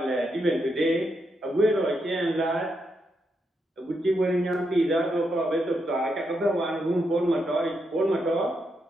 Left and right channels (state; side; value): normal; both; correlation 0.81